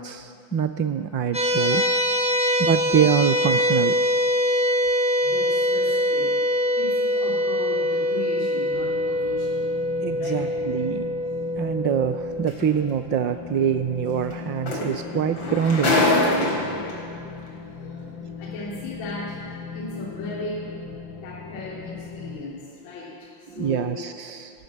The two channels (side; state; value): right; late; 5.9 ms